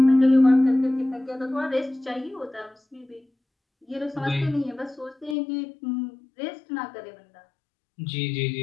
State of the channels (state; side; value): drops out; right; at 5.4 s